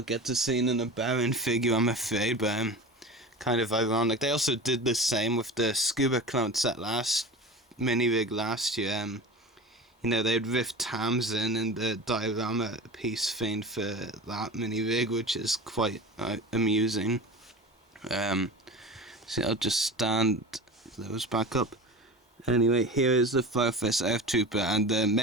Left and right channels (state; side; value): normal; both; correlation 0.32